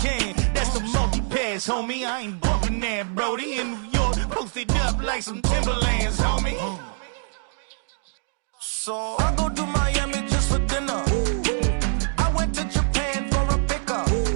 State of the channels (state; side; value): silent; left; 62 dB below the other